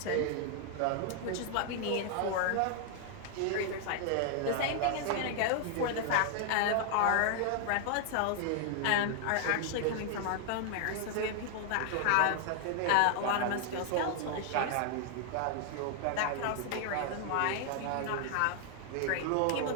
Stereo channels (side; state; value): both; different; correlation 0.00